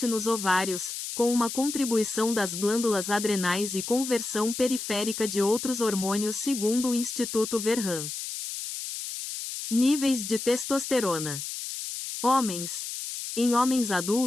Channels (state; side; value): noise; left; hiss, 6 dB below the sound